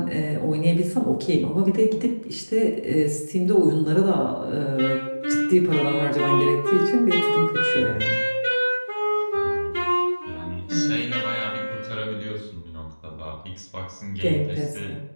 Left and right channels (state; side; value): inverted; both; correlation -1.00